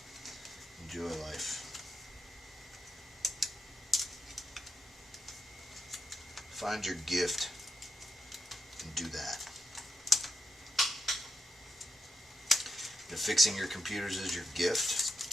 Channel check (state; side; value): normal; both; correlation 0.82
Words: Enjoy life. Find your gift and do that. If fixing your computers is your